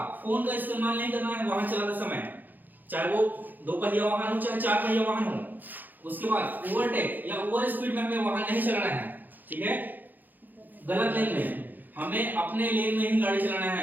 फोन का इस्तेमाल नहीं करना है वाहन चलाते समय, चाहे वो 2 पहिया वाहन हो चाहे 4 पहिया वाहन हो। उसके बाद ओवरटेक या ओवर स्पीड में हमें वाहन नहीं चलाना है, ठीक है। गलत लेन में हमें अपने लेन में ही गाड़ी चलाना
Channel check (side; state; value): left; late; 0.086 ms